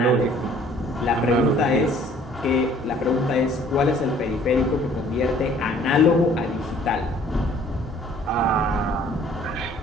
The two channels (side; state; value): both; normal; correlation 0.56